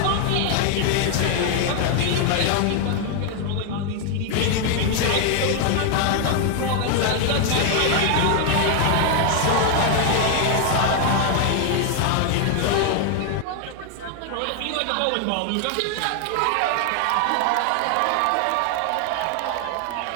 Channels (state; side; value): different; both; correlation 0.00